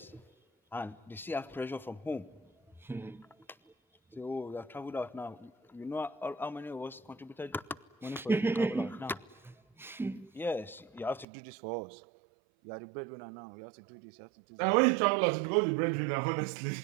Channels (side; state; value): left; drops out; at 11.2 s